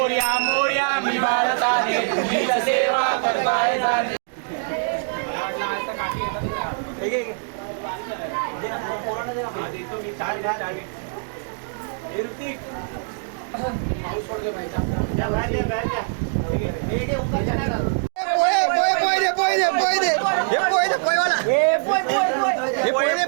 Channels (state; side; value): silent; left; digital silence